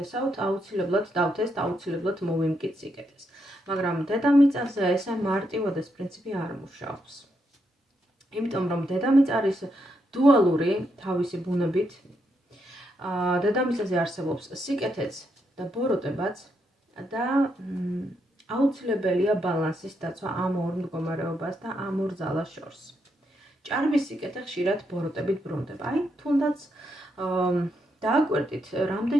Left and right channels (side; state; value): both; normal; correlation 0.80